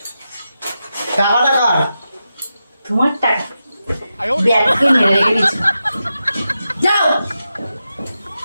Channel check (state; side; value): inverted; both; correlation -0.89